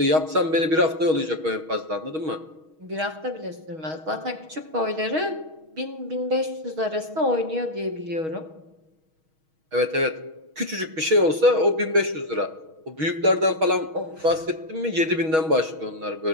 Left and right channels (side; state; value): left; late; 6.3 ms